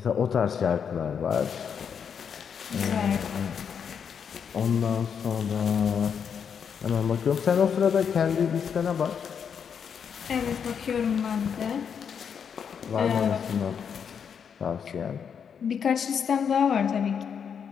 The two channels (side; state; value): right; quieter; 7.2 dB